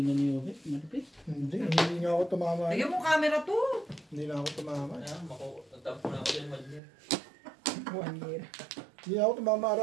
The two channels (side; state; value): left; drops out; at 6.8 s